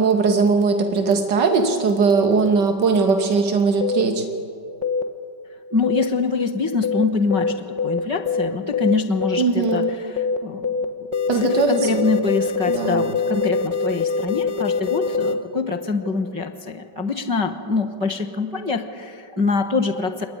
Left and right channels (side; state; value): left; late; 5.3 ms